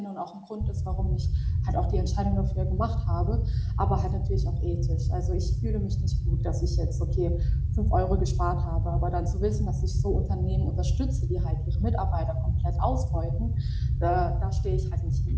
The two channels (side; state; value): both; identical; correlation 1.00